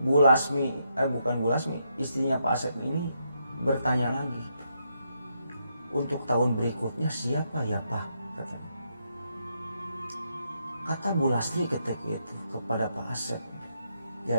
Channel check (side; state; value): both; inverted; correlation -0.79